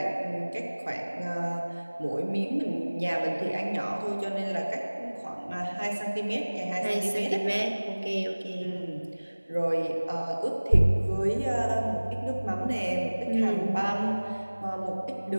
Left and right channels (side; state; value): both; inverted; correlation -1.00